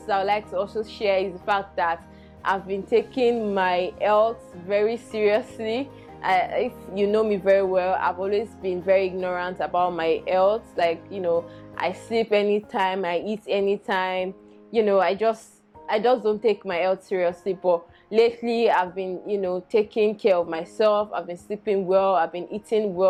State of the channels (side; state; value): both; identical; correlation 1.00